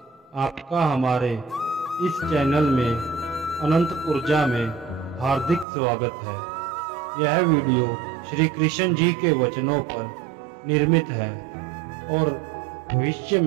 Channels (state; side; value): drops out; left; at 5.7 s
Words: आपका हमारे इस चैनल में अनंत ऊर्जा में हार्दिक स्वागत है। यह वीडियो श्री कृष्ण जी के वचनों पर निर्मित है और भविष्य